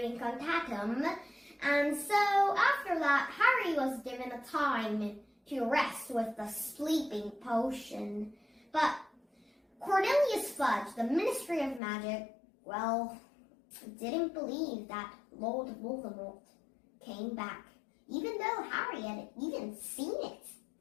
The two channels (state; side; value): drops out; right; at 11.8 s